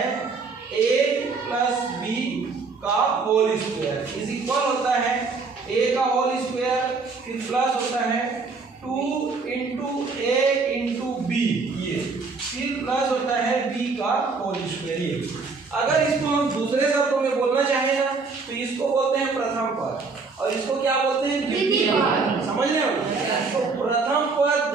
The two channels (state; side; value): quieter; left; 4.4 dB